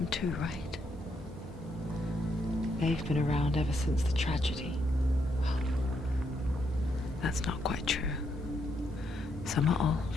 too, right? They've been around ever since the tragedy. Well, that's not quite true. Some are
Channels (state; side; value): normal; both; correlation 0.77